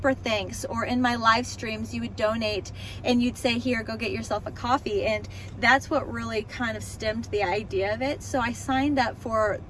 thanks, or in my live streams you would donate and you'd say, here, go get yourself a coffee. And that's what really kind of stemmed the idea of it. So I signed up for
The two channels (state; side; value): identical; both; correlation 1.00